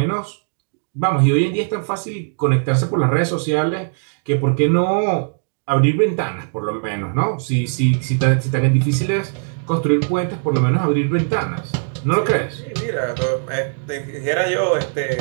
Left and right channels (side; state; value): left; silent; digital silence